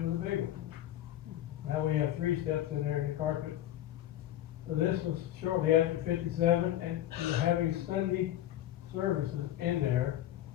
a big one. Now we have 3 steps in there in the carpet. So this was shortly after 57, and we're having Sunday services in there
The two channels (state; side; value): quieter; right; 12.7 dB